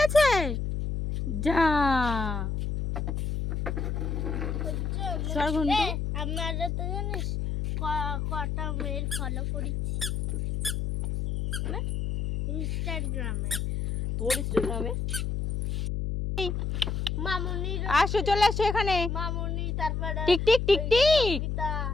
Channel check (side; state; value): left; noise; hum, 1 dB below the sound